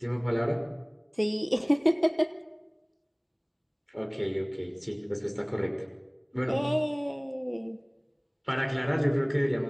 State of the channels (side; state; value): both; identical; correlation 1.00